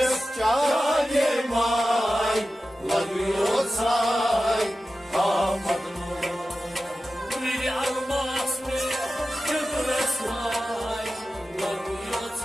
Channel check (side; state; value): both; normal; correlation 0.94